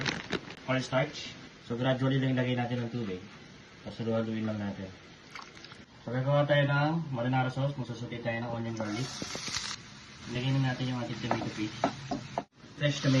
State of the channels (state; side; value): identical; both; correlation 1.00